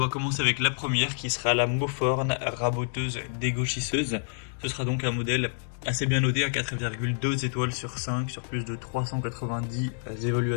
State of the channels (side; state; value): right; silent; digital silence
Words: commencer avec la première qui sera la Moforn raboteuse dégauchisseuse. Ce sera donc un modèle assez bien noté à 4,2 étoiles sur 5 sur plus de 390